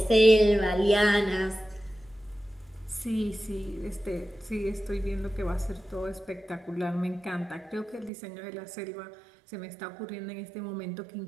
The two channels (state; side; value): drops out; left; at 8.1 s